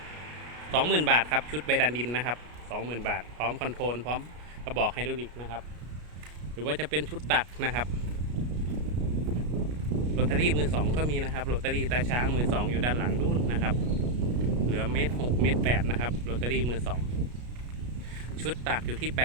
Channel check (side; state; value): left; late; 33 ms